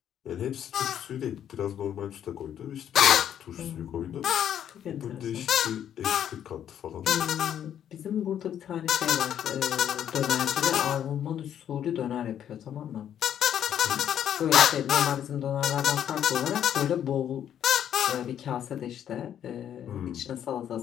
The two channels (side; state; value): right; quieter; 9.8 dB